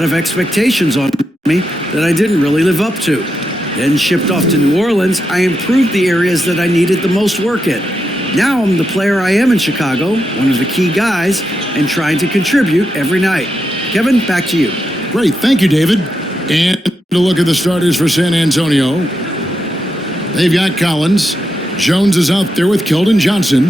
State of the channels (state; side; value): normal; both; correlation 0.85